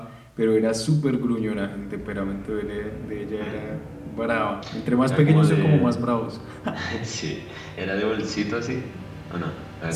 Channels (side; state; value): both; identical; correlation 1.00